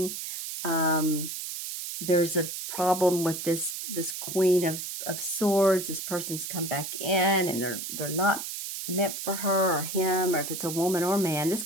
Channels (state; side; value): noise; right; hiss, 6 dB below the sound